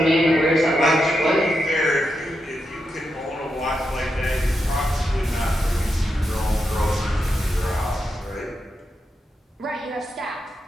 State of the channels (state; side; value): normal; both; correlation 0.85